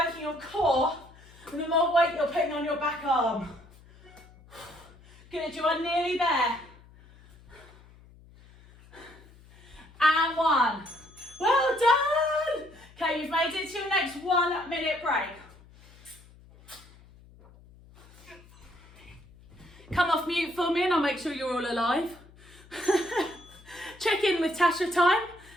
your core and the more weight you're putting on your back arm. Good, you are nearly there. And 1. Well done. Okay, you've made it to your next 1 minute break. Come off mute for me and I'll make sure you're all alive. Check in with Tasha time.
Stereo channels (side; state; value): left; noise; hum, 24 dB below the sound